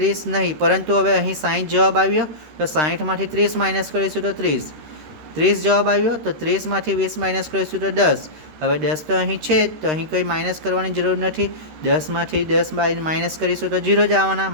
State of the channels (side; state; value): left; late; 13 ms